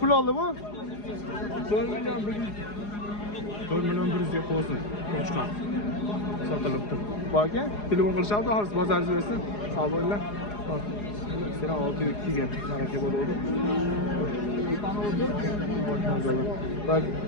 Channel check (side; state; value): right; late; 4.8 ms